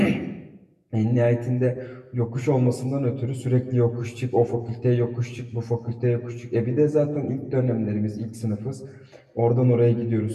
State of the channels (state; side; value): identical; both; correlation 1.00